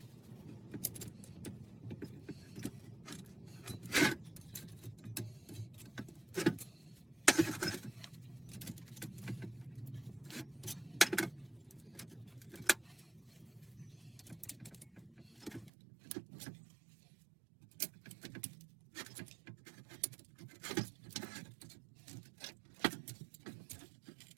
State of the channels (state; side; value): drops out; left; at 15.7 s